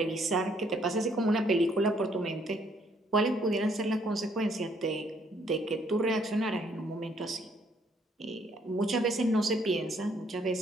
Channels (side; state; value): both; normal; correlation 0.67